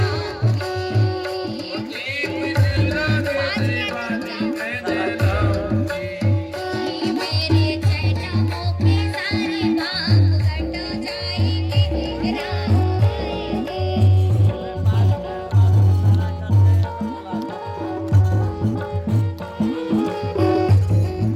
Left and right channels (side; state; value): both; identical; correlation 1.00